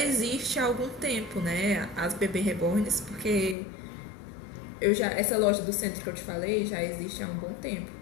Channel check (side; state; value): right; drops out; at 3.6 s